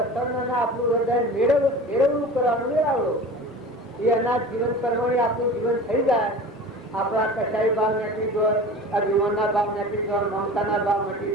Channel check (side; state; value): both; normal; correlation 0.37